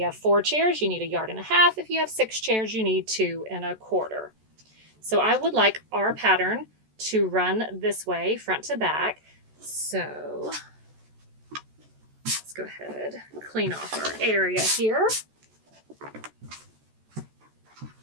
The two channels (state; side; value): late; left; 14 ms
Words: have 4 chairs, you need 1.5 yards. If you have 6 chairs, you need 2.25. So I would like our pattern to run this way, front to back. So let's go ahead and clean off our area here.